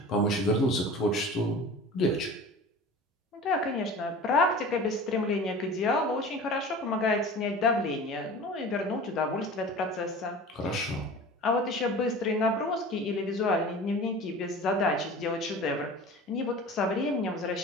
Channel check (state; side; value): normal; both; correlation 0.38